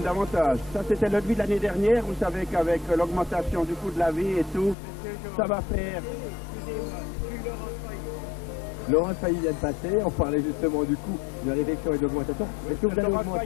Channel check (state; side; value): drops out; right; at 4.8 s